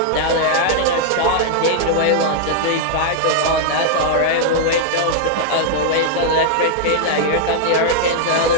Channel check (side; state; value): both; different; correlation -0.01